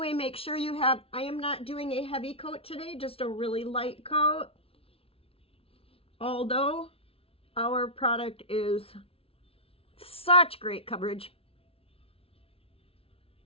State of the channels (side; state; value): right; late; 0.27 ms